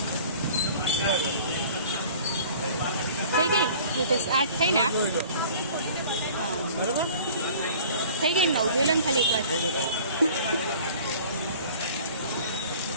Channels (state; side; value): inverted; both; correlation -0.46